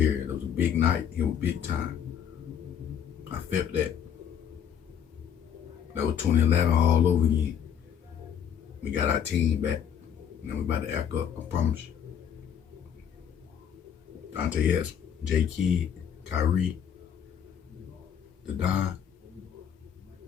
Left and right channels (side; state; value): right; quieter; 8.6 dB